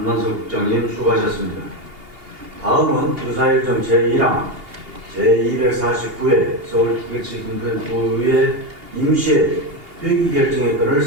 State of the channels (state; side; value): late; left; 2.8 ms